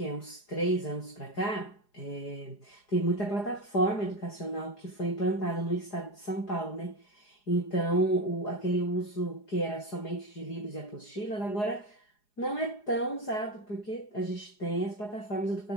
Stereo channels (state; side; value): late; right; 4.8 ms